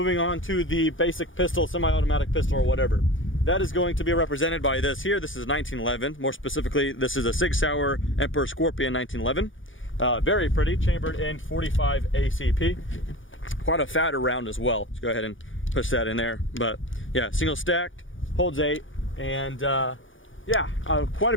on to the basic pistol, semi-automatic pistol or whatever. That is going to be represented by this here. This is 1911. More specifically, this is a Sig Sauer Emperor Scorpion 1911. Very pretty, chambered in 45 ACP. Quite a fatter round as well. Let's go ahead and push that in there. But yeah, single stacked, holds 8, and yeah, quite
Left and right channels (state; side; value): late; right; 0.57 ms